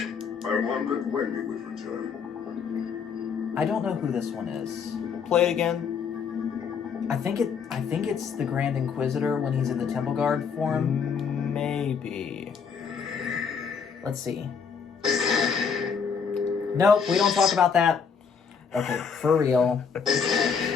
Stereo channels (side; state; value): right; quieter; 6.2 dB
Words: I wondered when you would return. I don't know who this one is. Play it again. I think it's the Grand Inquisitor when he's in the Temple Guard form. Maybe. Let's see. Nope, we don't talk about that. Okay, for real.